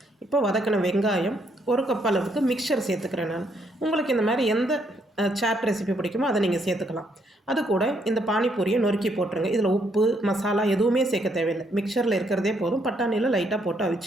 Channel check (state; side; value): normal; both; correlation 0.73